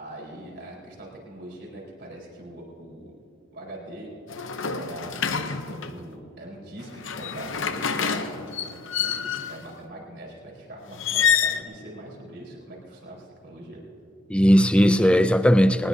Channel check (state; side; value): normal; both; correlation 0.72